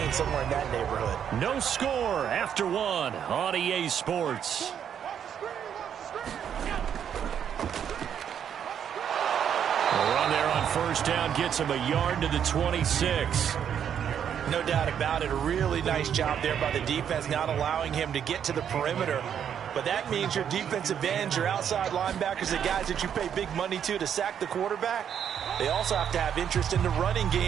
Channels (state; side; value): quieter; left; 8.7 dB